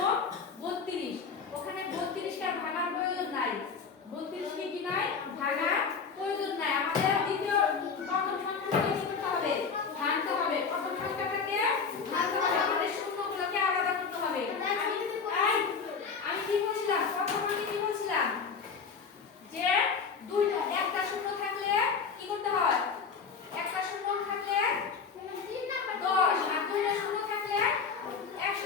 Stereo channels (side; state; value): right; quieter; 5.5 dB